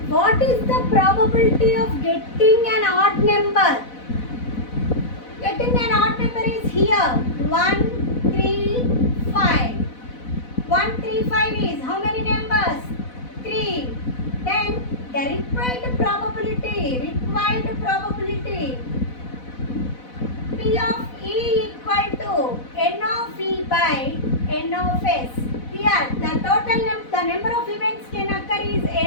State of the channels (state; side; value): late; right; 4.0 ms